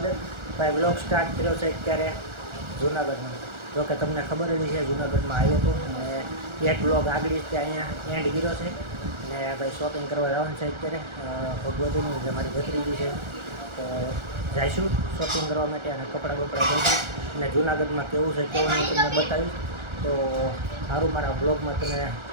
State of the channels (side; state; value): left; late; 1.4 ms